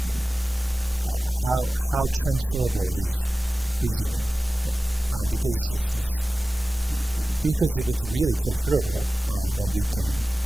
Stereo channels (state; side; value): normal; both; correlation 0.96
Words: then how transferable is reasoning? Right? Because if it's really transferable, then we can